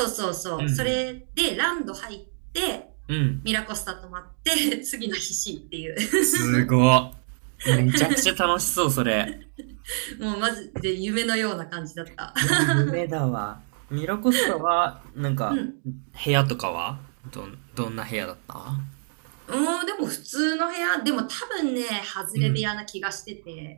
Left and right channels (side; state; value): left; silent; 61 dB below the other